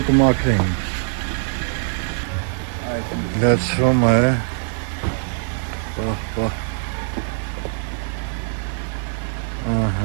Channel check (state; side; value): silent; left; 64 dB below the other